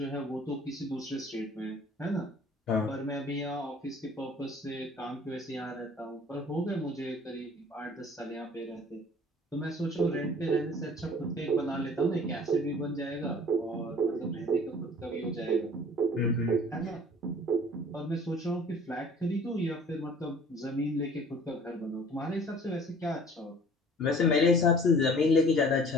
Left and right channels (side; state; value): both; normal; correlation 0.49